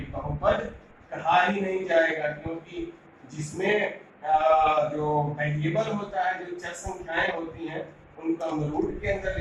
बहुपद कहा ही नहीं जाएगा, क्योंकि जिसमें जो वेरिएबल होता है, जो चर संख्याएं होती हैं, उनको हम रूट के अंदर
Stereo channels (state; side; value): identical; both; correlation 1.00